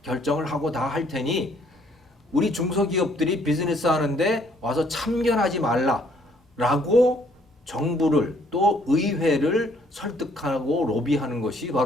결정을 하고 다 할 테니 우리 중소기업들이 비즈니스 하는데 와서 참견하지 말라라고 정부를 또 의회를 설득하고 로비하는 것이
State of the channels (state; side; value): normal; both; correlation 0.64